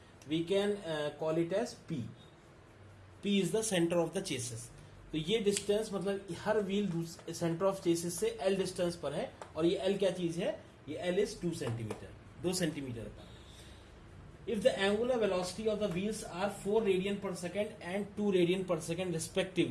we can call it as P. P is the centre of the chassis. तो ये डिस्टेंस मतलब हर व्हील सेंटर ऑफ चेसिस से L distance पर है, और ये L क्या चीज है, ये एल इज 2 सेंटीमीटर, 2 सेंटीमीटर पर। If the angular velocity of the wheels are 4 radian per second and 2 radian per second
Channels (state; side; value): identical; both; correlation 1.00